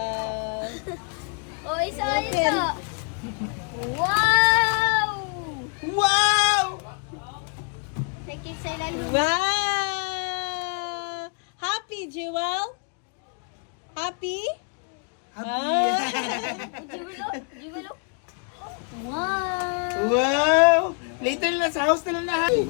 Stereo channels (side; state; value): right; quieter; 39.4 dB